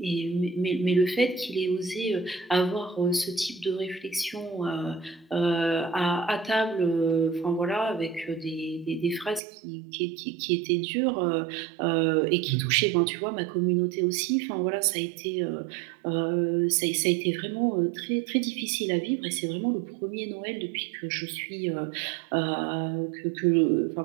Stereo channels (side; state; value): left; drops out; at 9.4 s